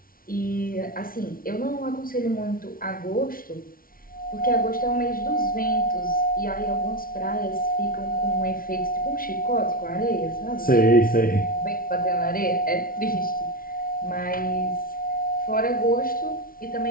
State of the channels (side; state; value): right; late; 0.42 ms